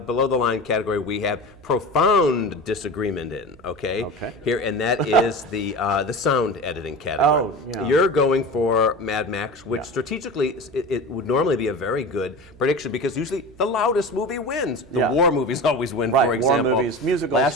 the line category we have profound disagreement in. Okay. Here, and that is the sound editing category. Oh, yeah. You're going for Mad Max, which strategically it would normally be a very good prediction because usually the loudest movie wins. The war movies always win, Right, for example. war movies, musicals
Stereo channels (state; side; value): noise; right; hum, 24 dB below the sound